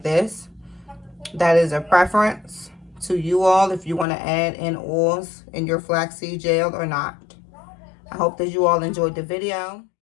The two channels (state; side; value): drops out; right; at 4.0 s